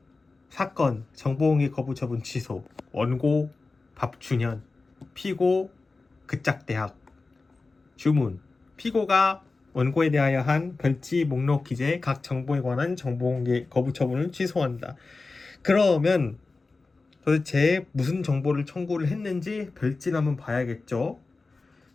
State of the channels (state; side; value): quieter; right; 3.7 dB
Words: 사건 정보공개 거부 처분 취소. 원고 박준현, 피고 그짝대학. 주문: 피고가 원고에 대하여 한 별지 목록 기재 각 정보에 관한 정보공개 거부 처분을 취소한다. 그러면 도대체 무슨 정보를 청구를 했는지 별지를 한번 봐야겠죠.